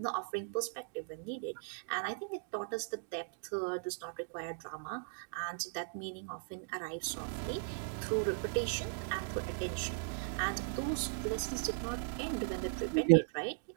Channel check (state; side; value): silent; left; digital silence